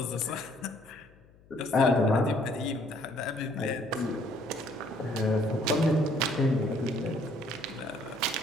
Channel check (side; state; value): left; noise; hum, 27 dB below the sound